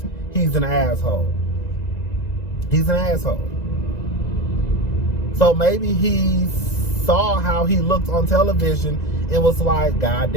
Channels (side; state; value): right; late; 2.0 ms